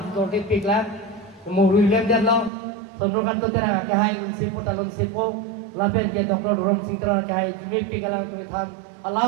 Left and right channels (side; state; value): left; drops out; at 2.5 s